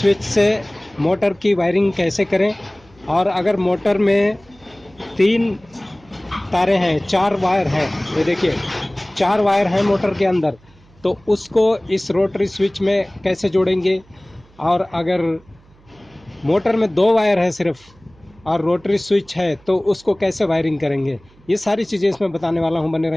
से मोटर की वायरिंग कैसे करें। और अगर मोटर में 3 तारे हैं, 4 वायर हैं, ये देखिए 4 वायर हैं मोटर के अंदर, तो उसको इस रोटरी स्विच में कैसे जोड़ेंगे। और अगर मोटर में 2 वायर है सिर्फ और रोटरी स्विच है तो उसको कैसे वायरिंग करेंगे, ये सारी चीज़ें इसमें बताने वाला हूँ। बने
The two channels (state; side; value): noise; right; hum, 29 dB below the sound